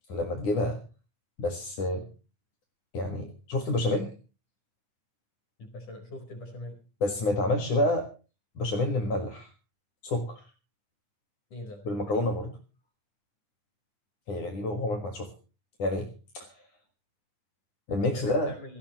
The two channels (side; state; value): right; late; 9.9 ms